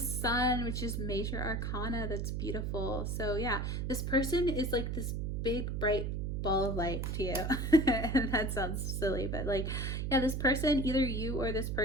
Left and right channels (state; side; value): noise; right; hum, 1 dB below the sound